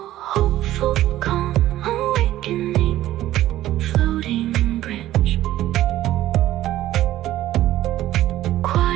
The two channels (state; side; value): quieter; left; 14.1 dB